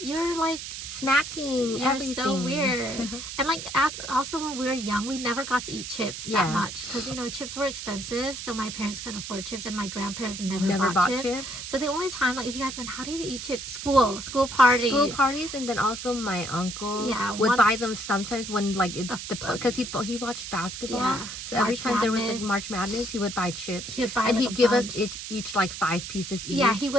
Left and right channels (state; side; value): noise; right; hiss, 8 dB below the sound